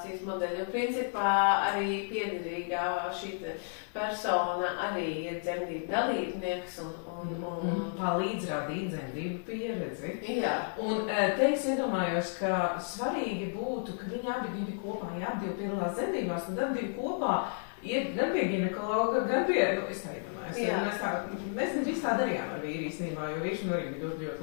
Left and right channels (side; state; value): right; silent; digital silence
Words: modeļi. Un principā arī piederīgā šī persona arī ir dzemdību dalībnieks un palīdz radīt dzemdību pieredzi. Jā. Un te es iedomājos, ka svarīgi būtu, ka viņi abi kopā, ja abi piedalās dzemdībās, tad abi kopā iet gan pie ginekologa, gan pie, es tā iedomājos, mēs drīz tā darījām ar vīri īstenībā, jo vīrs arī bija ļoti, ļoti